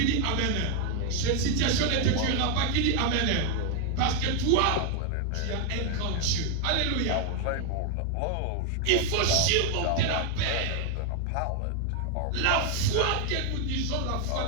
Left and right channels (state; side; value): different; both; correlation 0.01